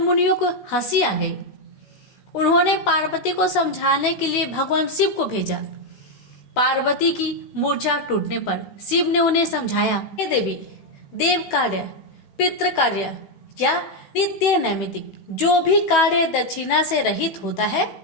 को हंसी आ गई। उन्होंने पार्वती को समझाने के लिए भगवान शिव को भेजा। पार्वती की मूर्छा टूटने पर शिव ने उन्हें समझाया, हे देवी, देव कार्य, पितृ कार्य या नित्य नैमित्तिक जो भी कार्य दक्षिणा से रहित होता है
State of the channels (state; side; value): late; right; 16 ms